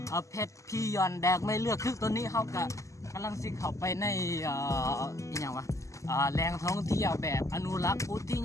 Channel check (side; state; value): right; late; 0.16 ms